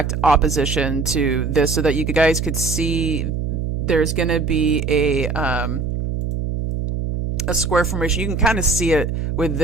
opposition to this so that you guys could see there's going to be a square formation. You can kind of see it with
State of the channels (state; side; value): noise; right; hum, 2 dB below the sound